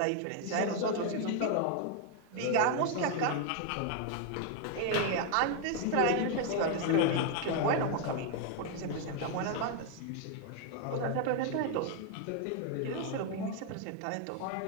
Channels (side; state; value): both; different; correlation 0.01